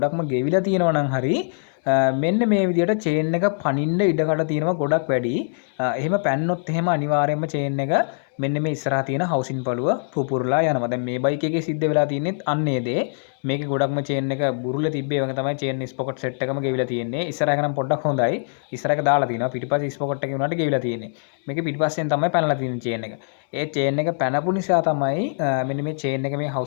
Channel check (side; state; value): right; silent; digital silence